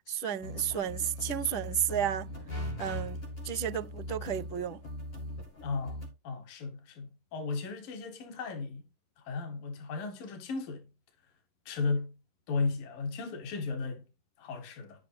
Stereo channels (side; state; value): right; late; 11 ms